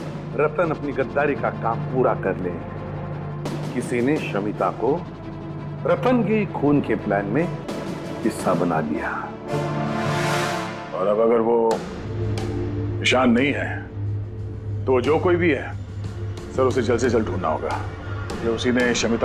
रतन अपनी गद्दारी का काम पूरा कर ले, किसी ने शमिता को रतन के खून के प्लान में हिस्सा बना लिया। और अब अगर वो ईशान नहीं है तो जो कोई भी है सर, उसे जल्द से जल्द ढूंढना होगा कि उसी ने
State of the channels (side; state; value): both; identical; correlation 1.00